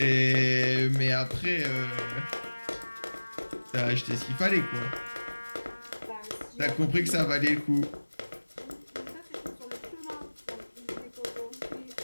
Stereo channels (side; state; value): both; inverted; correlation -1.00